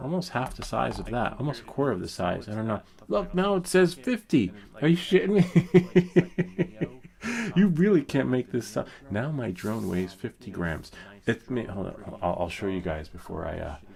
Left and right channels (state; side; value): identical; both; correlation 1.00